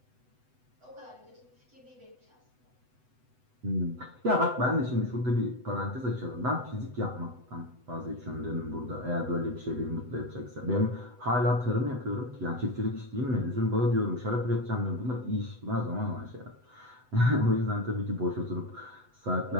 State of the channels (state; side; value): late; left; 8.0 ms